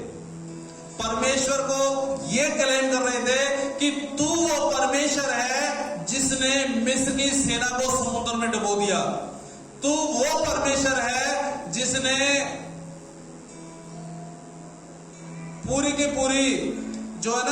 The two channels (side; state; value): both; identical; correlation 1.00